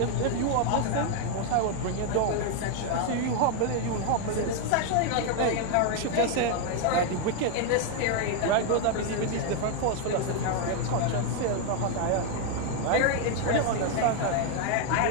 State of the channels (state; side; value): different; both; correlation 0.00